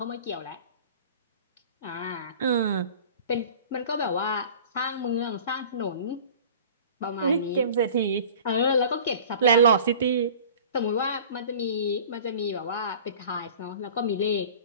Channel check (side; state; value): both; inverted; correlation -0.43